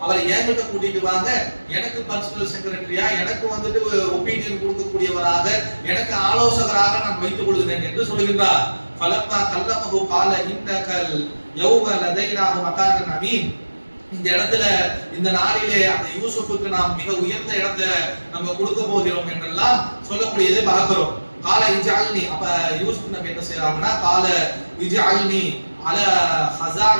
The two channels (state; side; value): inverted; both; correlation -1.00